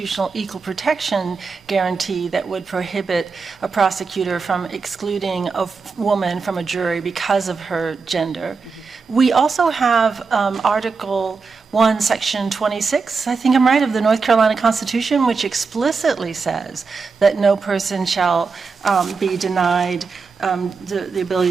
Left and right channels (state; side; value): quieter; left; 4.8 dB